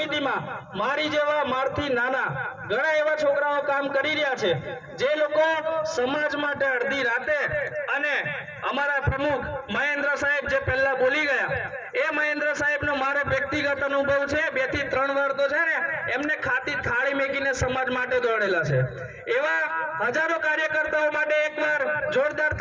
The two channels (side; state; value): both; identical; correlation 1.00